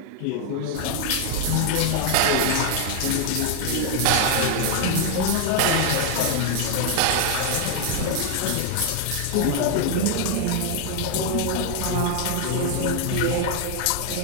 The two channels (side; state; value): both; different; correlation 0.00